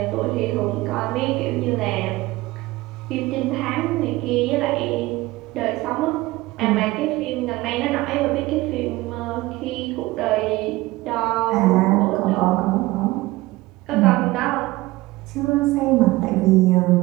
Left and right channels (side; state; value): left; quieter; 19.6 dB